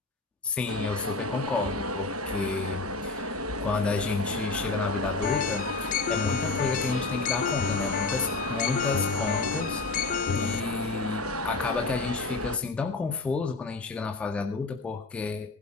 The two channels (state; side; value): quieter; right; 3.6 dB